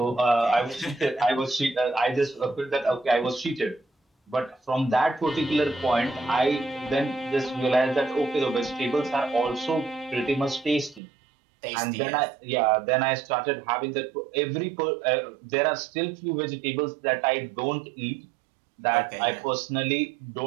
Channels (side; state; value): left; drops out; at 11.0 s